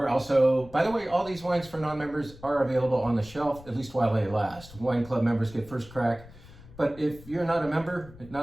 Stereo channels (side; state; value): left; noise; rumble, 19 dB below the sound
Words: also, by the way, all these wines for non-members are available on the shelf, at least while they last. Wine club members get first crack. But if you're not a member,